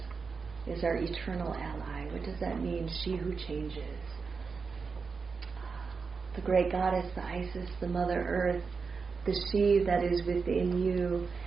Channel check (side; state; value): left; quieter; 5.0 dB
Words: is our eternal ally. What does that mean, she who changes? The great goddess, the Isis, the Mother Earth, the she that is within you.